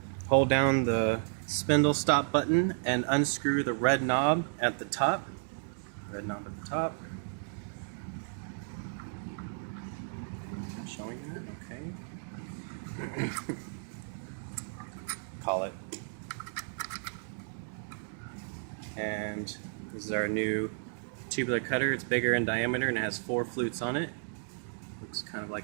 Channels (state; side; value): silent; left; digital silence